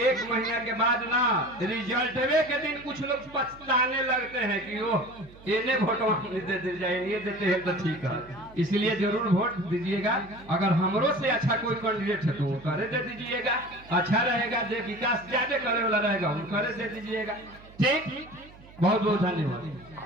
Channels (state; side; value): noise; right; hum, 22 dB below the sound